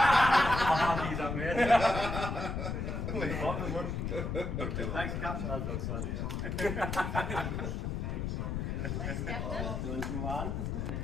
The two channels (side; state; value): left; noise; rumble, 2 dB below the sound